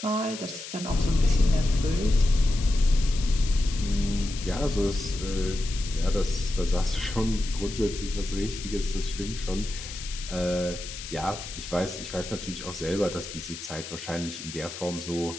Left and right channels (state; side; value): noise; left; hiss, 11 dB below the sound